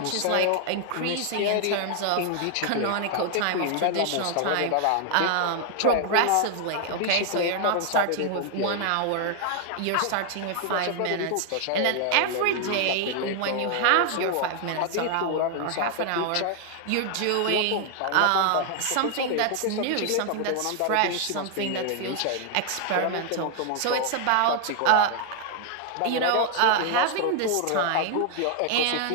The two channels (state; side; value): different; both; correlation 0.00